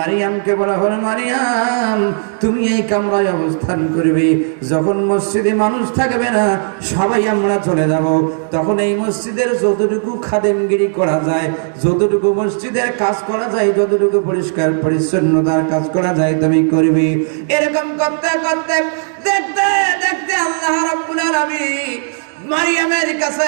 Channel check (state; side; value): silent; left; 67 dB below the other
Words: বলা হলো, মারিয়াম, তুমি এই কামরায় অবস্থান করবে। যখন মসজিদে মানুষ থাকবে না, সবাই আমরা চলে যাব, তখন এই মসজিদের যতটুকু খাদেমগিরি করা যায়, যতটুকু মসজিদের কাজ করা যায়, যতটুকু পরিষ্কার পরিচ্ছন্নতার কাজ করা যায়, তুমি করবে। এরকম করতে করতে দেখতে দেখতে আল্লাহ রাব্বুল আলামিন মারিয়ামের